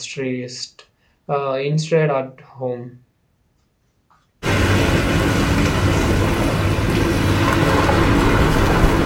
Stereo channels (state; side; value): identical; both; correlation 1.00